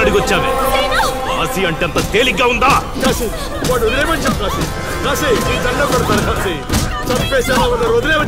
అడిగొచ్చావే? కాశీ అంటే అంత తేలిగ్గా ఉందా? కాశీ వాడు వదిలేమని చెప్పు. కాశీ కాశీ నీ దండ కొడతాను. కాశీ చంపేసేలా ఉన్నారు.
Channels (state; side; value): identical; both; correlation 1.00